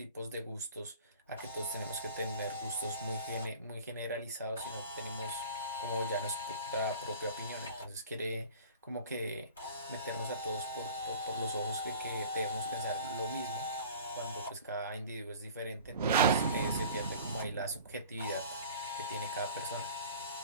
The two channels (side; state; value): both; inverted; correlation -0.43